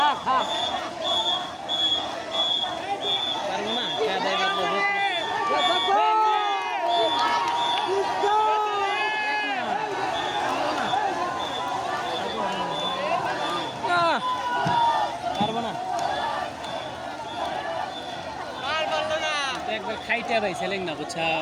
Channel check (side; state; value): both; identical; correlation 1.00